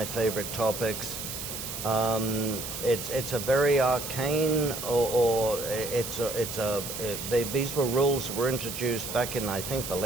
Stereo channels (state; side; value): noise; right; hiss, 7 dB below the sound